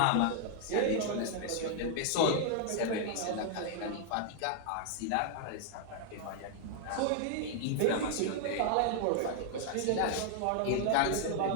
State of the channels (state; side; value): different; both; correlation 0.00